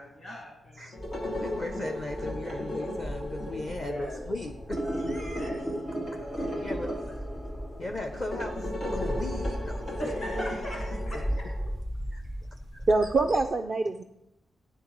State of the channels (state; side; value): normal; both; correlation 0.89